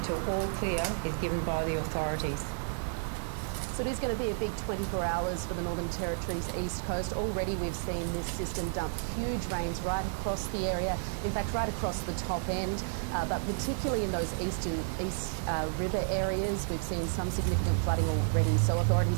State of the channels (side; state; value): left; silent; digital silence